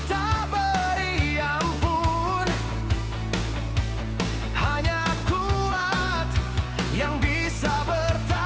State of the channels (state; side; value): identical; both; correlation 1.00